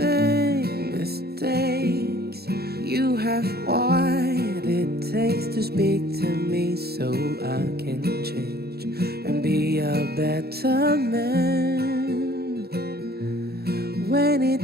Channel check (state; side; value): late; left; 0.46 ms